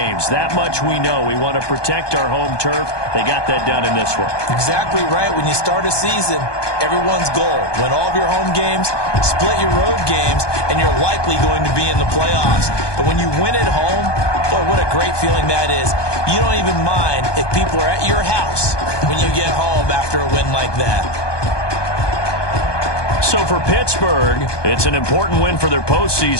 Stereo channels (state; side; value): late; right; 1.2 ms